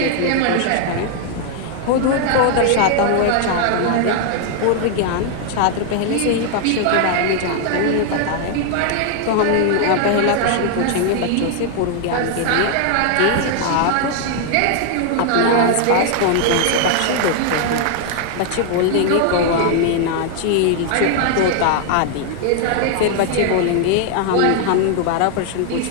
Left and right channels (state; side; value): different; both; correlation 0.00